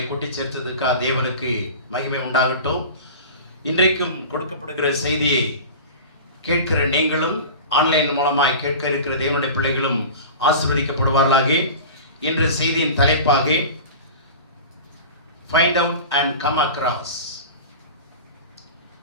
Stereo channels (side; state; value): both; inverted; correlation -0.34